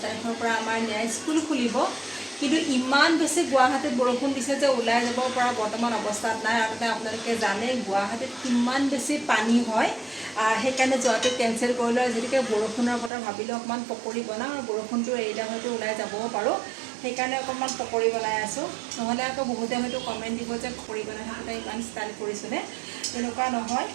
তাৰিখৰ পৰা আমাৰ স্কুল খুলিব। কিন্তু ইমান বেছি গুৱাহাটীত বৰষুণ দিছে যে ওলাই যাব পৰা বৰ্তমান অৱস্থাত নাই। আৰু তাতে আপোনালোকে জানে গুৱাহাটীত কিমান বেছি পানী হয়। সেইকাৰণে যোৱাটো কেঞ্চেল কৰিলোঁ। যিহেতুকে বৰষুণৰ বতৰ ভাবিলোঁ অকণমান পকৰি বনাওঁ আৰু বৰষুণটো এৰিলে হয়তো ওলাই যাবও পাৰোঁ। সেইকাৰণে অকণমান পকৰি বনাই আছোঁ। নহ'লে আকৌ বহুতে হয়তো কমেণ্ট দিব যে পকৰি বনাই থাকোঁতে ইমান ষ্টাইল কৰিছোঁনে। তেনেকুৱা নহয়।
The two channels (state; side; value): drops out; left; at 13.1 s